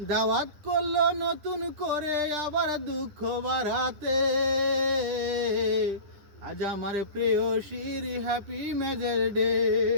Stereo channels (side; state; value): left; late; 9.9 ms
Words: দাওয়াত করলো নতুন করে আবার দুঃখ বাড়াতে। আজ আমার প্রেয়সীর হ্যাপি ম্যারেজ ডে,